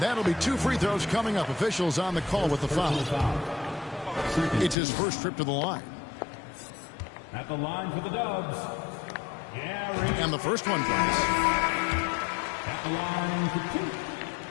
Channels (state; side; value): drops out; right; at 4.8 s